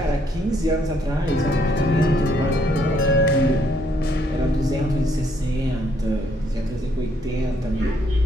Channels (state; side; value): normal; both; correlation 0.69